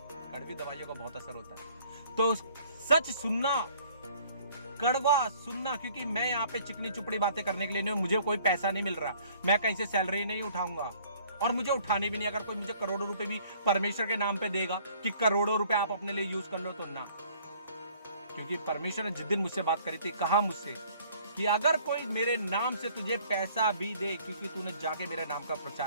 कड़वी दवाइयों का बहुत असर होता है। तो सच सुनना, कड़वा सुनना, क्योंकि मैं यहाँ पे चिकनी चुपड़ी बातें करने के लिए नहीं, मुझे कोई पैसा नहीं मिल रहा, मैं कहीं से सैलरी नहीं उठाऊंगा, और मुझे उठाने भी नहीं। अगर कोई मुझे करोड़ों रुपए भी परमेश्वर के नाम पे देगा कि करोड़ों रुपए आप अपने लिए यूज कर लो, तो ना। क्योंकि परमेश्वर ने जिस दिन मुझसे बात करी थी, कहा मुझसे कि अगर कोई मेरे नाम से तुझे पैसा भी दे, क्योंकि तूने जाके मेरे नाम का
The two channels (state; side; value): inverted; both; correlation -0.57